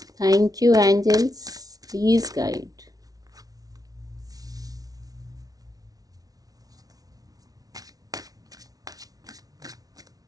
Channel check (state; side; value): late; left; 0.18 ms